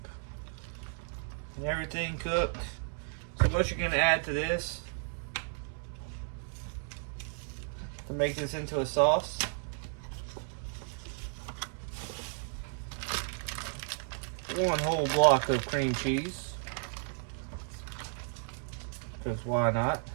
and everything cooked. So what you're going to add to this to make this into a sauce, one whole block of cream cheese, because why not?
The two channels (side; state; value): left; silent; 55 dB below the other